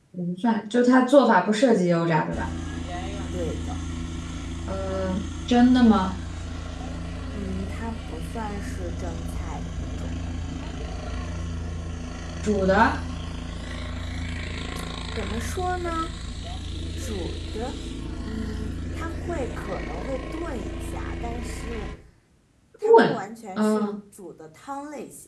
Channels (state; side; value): identical; both; correlation 1.00